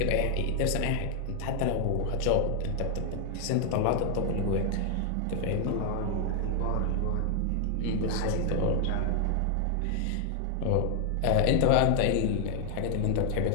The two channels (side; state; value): both; different; correlation 0.00